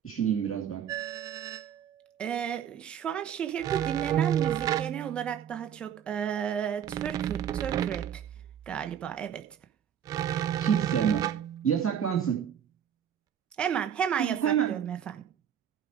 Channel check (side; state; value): left; quieter; 9.1 dB